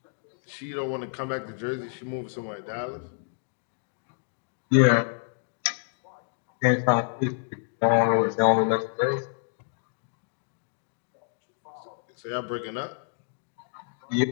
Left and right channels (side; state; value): right; silent; digital silence